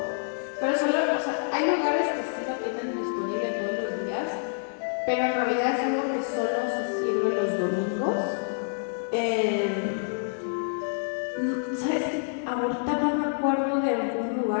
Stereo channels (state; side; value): silent; right; 60 dB below the other